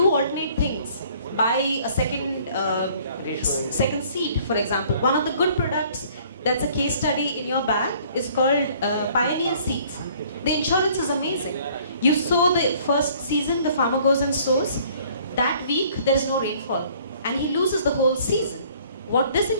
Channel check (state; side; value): inverted; both; correlation -0.57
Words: alternate things, buy a second seed, for example. One of the good products that's a case study in your bag is called Pioneer Seeds. The insurance is amazing. You sow the first season, the farmer goes and sows. That week there is no rainfall and he loses the whole season. What this